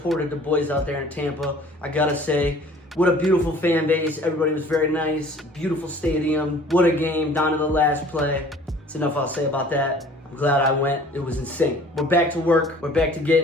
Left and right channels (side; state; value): both; normal; correlation 0.50